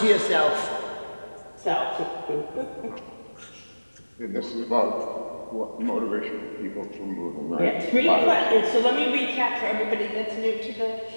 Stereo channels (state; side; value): inverted; both; correlation -1.00